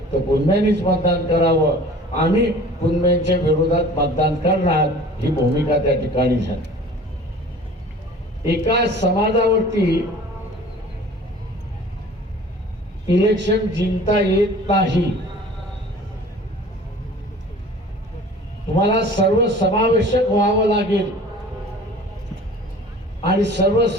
तर कुणब्यांनीच मतदान करावं, आम्ही कुणब्यांच्या विरोधात मतदान करणार, ही भूमिका त्या ठिकाणी झाली. एका समाजावरती इलेक्शन जिंकता येत नाही. तुम्हाला सर्व समावेशक व्हावं लागेल आणि सर्व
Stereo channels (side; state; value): both; normal; correlation 0.45